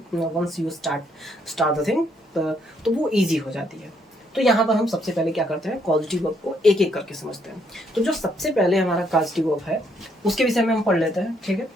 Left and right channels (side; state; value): both; normal; correlation 0.72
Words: once you start the thing तो वो ईजी हो जाती है। तो यहाँ पर हम सबसे पहले क्या करते हैं, कॉजिटिव वर्ब को एक एक करके समझते हैं। तो जो सबसे पहले हमारा कॉजिटिव वर्ब है उसके विषय में हम पढ़ लेते हैं। ठीक